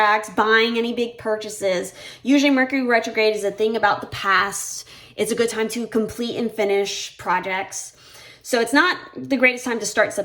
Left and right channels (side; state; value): both; identical; correlation 1.00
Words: buying any big purchases. Usually Mercury retrograde is a thing about the past. It's a good time to complete and finish projects. So it's not the greatest time to start